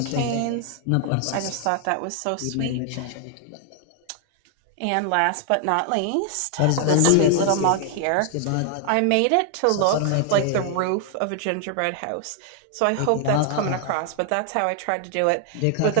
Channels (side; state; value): both; different; correlation 0.00